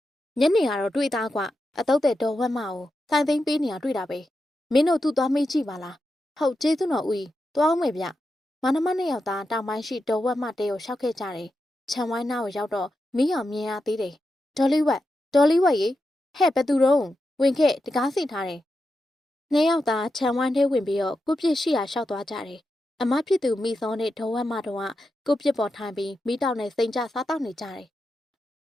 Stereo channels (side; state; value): both; normal; correlation 0.88